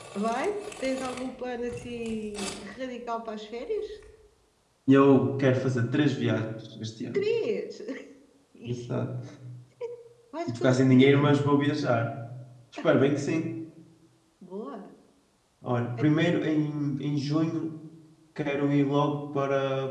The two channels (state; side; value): identical; both; correlation 1.00